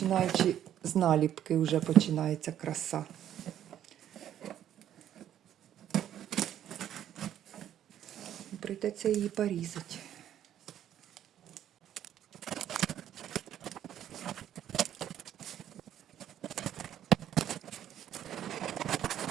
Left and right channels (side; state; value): left; quieter; 10.8 dB